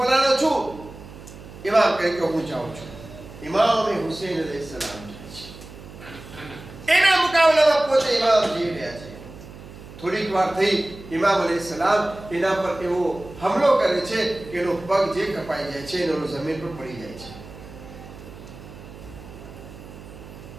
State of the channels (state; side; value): noise; right; hum, 16 dB below the sound